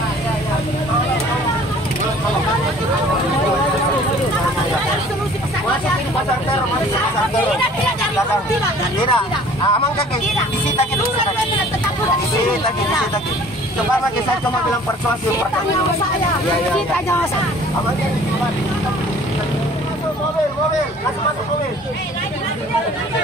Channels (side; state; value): both; normal; correlation 0.51